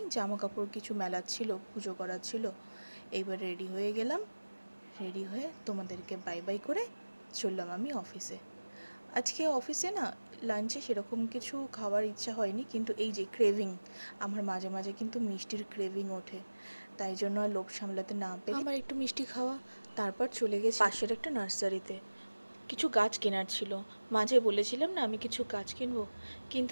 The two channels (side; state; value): both; inverted; correlation -1.00